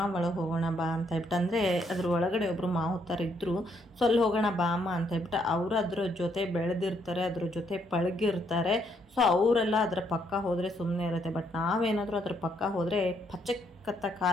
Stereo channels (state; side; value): normal; both; correlation 0.72